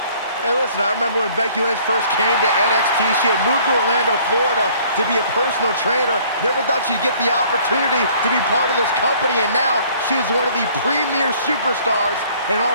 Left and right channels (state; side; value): inverted; both; correlation -0.56